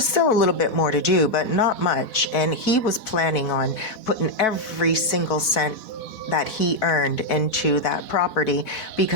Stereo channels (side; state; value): right; late; 4.1 ms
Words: still a little bit more to do, but not much. And he was planning on putting every single cent that he earned into that property